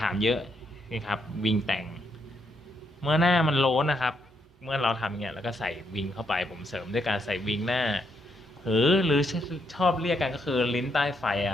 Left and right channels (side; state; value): both; normal; correlation 0.77